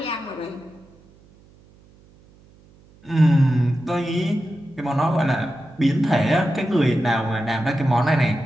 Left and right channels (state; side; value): noise; right; hum, 28 dB below the sound